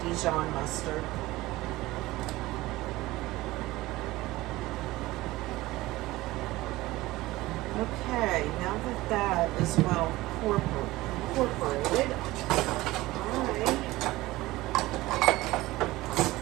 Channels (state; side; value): quieter; left; 18.6 dB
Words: Dijon mustard. Okay, now that that is well incorporated,